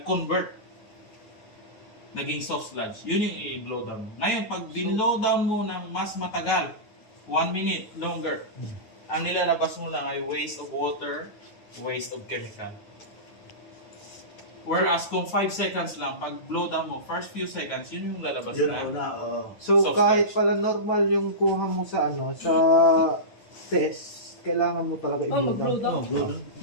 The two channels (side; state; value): right; late; 9.7 ms